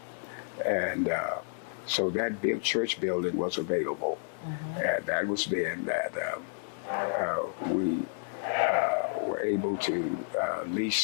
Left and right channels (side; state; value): right; silent; digital silence